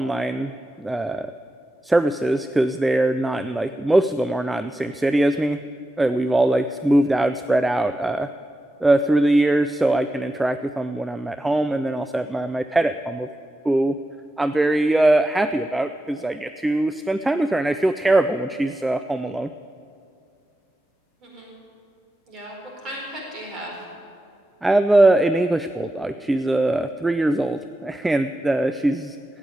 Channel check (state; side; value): normal; both; correlation 0.91